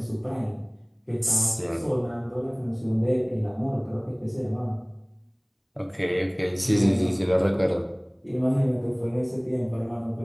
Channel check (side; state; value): both; identical; correlation 1.00